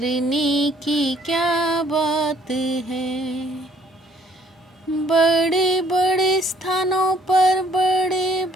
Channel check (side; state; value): both; normal; correlation 0.61